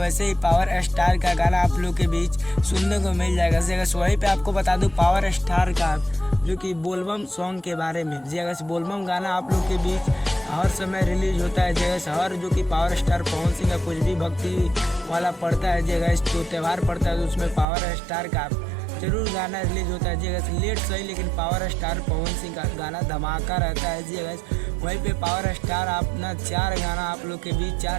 ही पावर स्टार का गाना आप लोग के बीच सुनने को मिल जाएगा। वहीं पे आपको बता दूं पावर स्टार का जो कि बोलबम सॉन्ग के बारे में, बोलबम गाना आप लोग के बीच हर समय रिलीज होता है। हर जो कि पावर स्टार पवन सिंह का कुछ भी भक्ति वाला पड़ता है तो त्यौहार पड़ता है, तो उसमें पावर स्टार का जरूर गाना रिलीज होता है। लेट सही, लेकिन पावर स्टार पवन सिंह का गाना धमाका रहता है। वहीं पे पावर स्टार अपना 4 गाना आप लोग के बीच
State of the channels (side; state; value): left; drops out; at 17.7 s